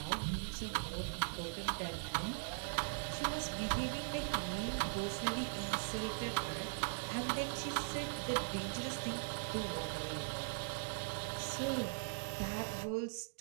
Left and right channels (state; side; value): silent; left; digital silence